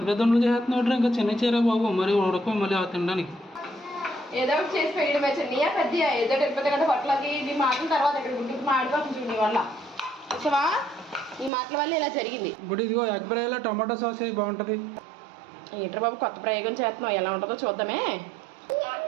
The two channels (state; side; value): drops out; left; at 11.5 s